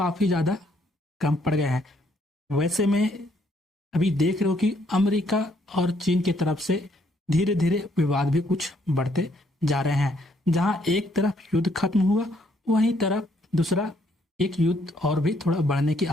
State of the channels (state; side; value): normal; both; correlation 0.69